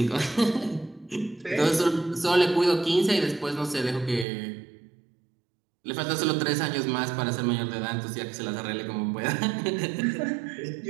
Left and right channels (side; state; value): left; drops out; at 4.2 s